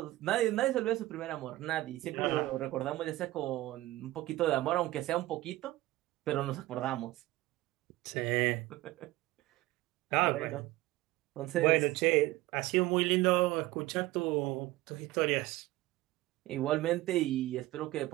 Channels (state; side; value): quieter; left; 17.8 dB